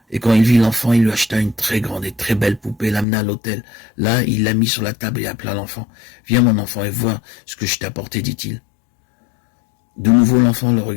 Et quand il vit l'enfant, il lui acheta une très grande et très belle poupée, l'amena à l'hôtel. Là, il la mit sur la table et appela l'enfant. « Viens mon enfant et vois ce que je t'ai apporté, dit-il. » De nouveau, l'enfant le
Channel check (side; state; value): right; drops out; at 3.1 s